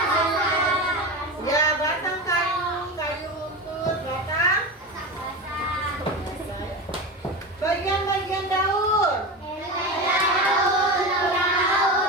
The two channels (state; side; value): normal; both; correlation 0.24